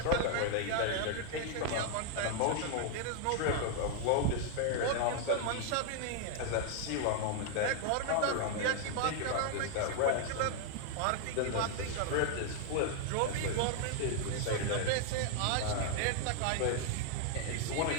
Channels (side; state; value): both; different; correlation 0.00